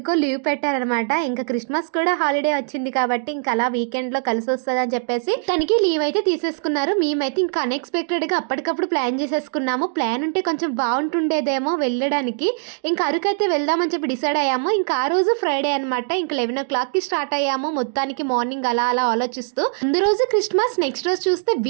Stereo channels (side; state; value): left; silent; digital silence